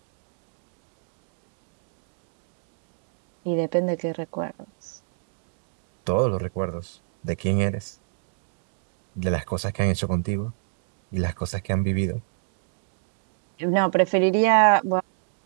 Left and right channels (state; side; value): silent; left; digital silence